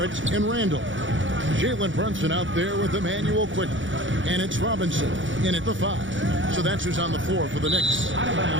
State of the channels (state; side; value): late; left; 0.56 ms